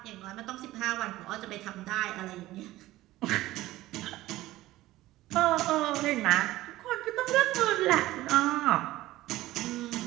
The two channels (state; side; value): quieter; left; 16.6 dB